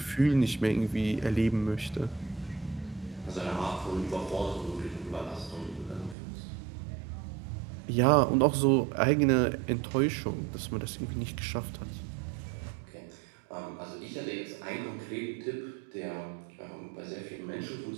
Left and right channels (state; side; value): drops out; left; at 6.2 s